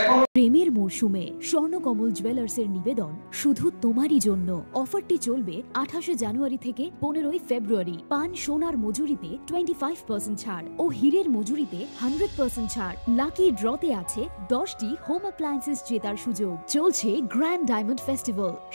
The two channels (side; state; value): both; inverted; correlation -1.00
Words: এখন প্রেমের মরশুমে স্বর্ণকমল জুয়েলার্সের নিবেদন শুধু তোমারই জন্য। অফারটি চলবে 28 জানুয়ারি থেকে 15 ফেব্রুয়ারি। পান সোনার মজুরিতে 25% ছাড় ও হীরের মজুরিতে 100% ছাড়। লাকি ড্রতে আছে 10টি হোম অ্যাপ্লায়েন্সেস জেতার সুযোগ। চলছে গ্র্যান্ড ডায়মন্ড ফেস্টিভ্যাল,